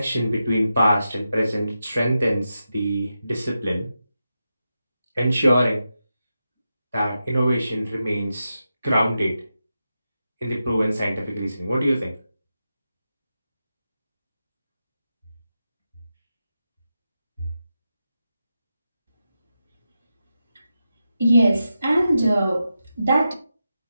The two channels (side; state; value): both; inverted; correlation -0.89